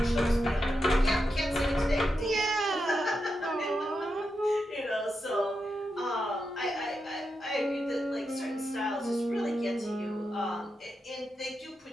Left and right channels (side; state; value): both; normal; correlation 0.87